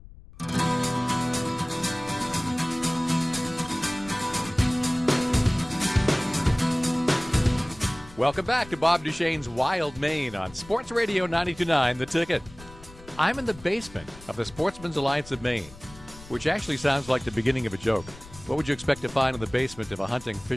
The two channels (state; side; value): noise; left; rumble, 19 dB below the sound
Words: Welcome back to Bob Duchesne's Wild Maine on Sports Radio 92.9, The Ticket. I'm in the basement of the Sportsman's Alliance of Maine, which actually sounds like the beginning of a joke. What would you expect to find in the basement of a hunting,